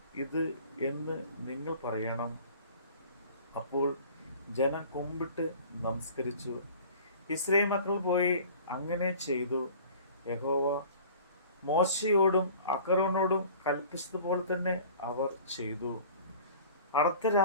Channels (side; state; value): both; inverted; correlation -0.45